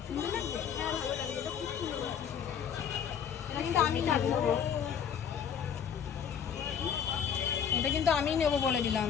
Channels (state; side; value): quieter; right; 7.9 dB